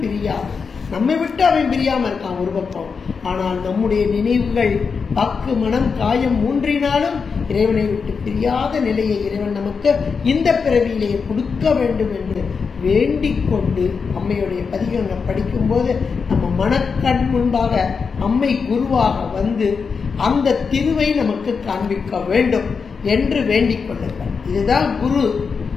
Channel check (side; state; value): right; quieter; 5.4 dB